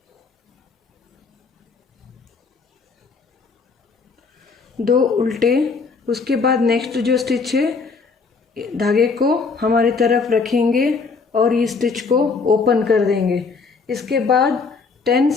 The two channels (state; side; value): quieter; right; 4.7 dB